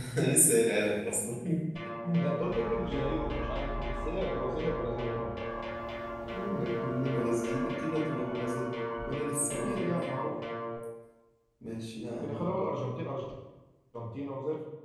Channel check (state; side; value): identical; both; correlation 1.00